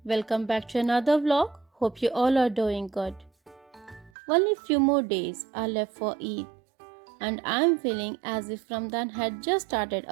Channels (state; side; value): drops out; left; at 4.1 s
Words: welcome back to another vlog. Hope you all are doing good. Only few more days are left for Eid, and I'm feeling as if Ramadan had just started